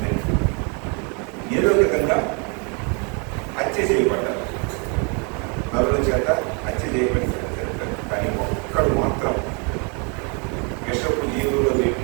ఏదో విధంగా హత్య చేయబడ్డారు, నలుగుల చేత హత్య చేయబడి. కానీ ఒక్కడు మాత్రం విషపు జీవుల్లో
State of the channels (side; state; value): left; quieter; 35.1 dB